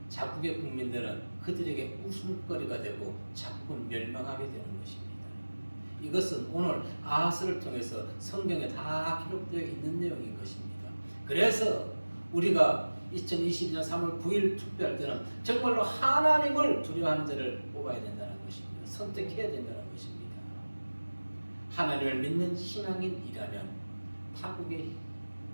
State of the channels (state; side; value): inverted; both; correlation -1.00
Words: 자국의 국민들은 그들에게 웃음거리가 되고 자국은 멸망하게 되는 것입니다. 이것은 오늘 아하스를 통해서 성경에 다 기록되어 있는 내용인 것입니다. 그래서 우리가 2022년 3월 9일 투표할 때는 정말로 하나님을 두려워하는 자를 뽑아야 된다는 것입니다. 선택해야 된다는 것입니다. 하나님을 믿는 신앙인이라면 타국의